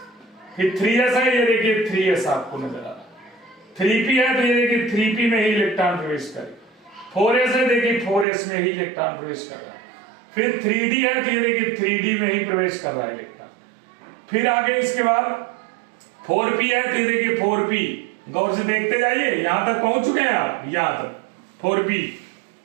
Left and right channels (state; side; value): drops out; left; at 8.2 s